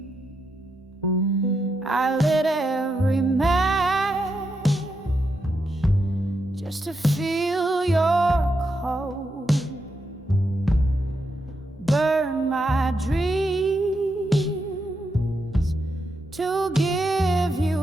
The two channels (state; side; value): normal; both; correlation 0.83